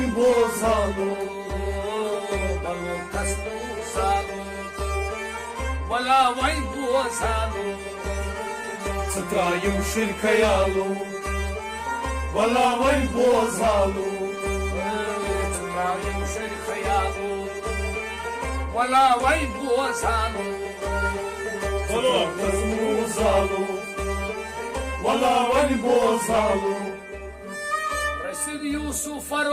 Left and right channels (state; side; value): identical; both; correlation 1.00